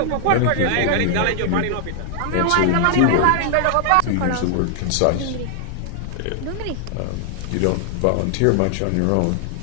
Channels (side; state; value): both; different; correlation 0.00